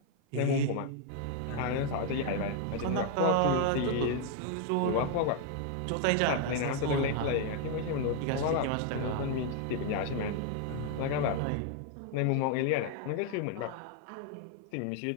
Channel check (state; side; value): different; both; correlation 0.00